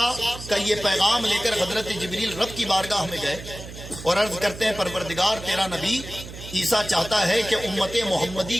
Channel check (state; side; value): noise; right; hum, 13 dB below the sound